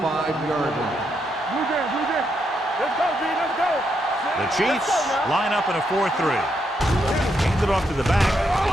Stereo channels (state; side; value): normal; both; correlation 0.79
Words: line. Blue Jay, Blue Jay. Let's go, B. Let's go. The Chiefs line up in a 4-3. Hand it off to the back.